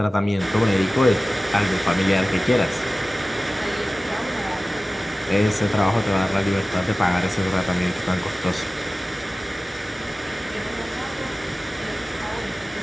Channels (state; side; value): normal; both; correlation 0.97